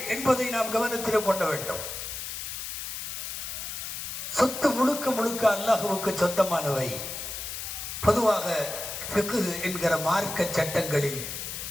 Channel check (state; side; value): noise; left; hiss, 6 dB below the sound